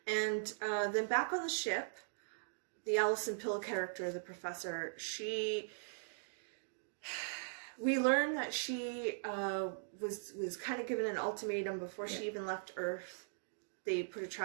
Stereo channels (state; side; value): silent; left; digital silence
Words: And then back on the ship, the Alison Pill character, the professor, we learned that she was kind of given an ultimatum before she even left Earth. They put a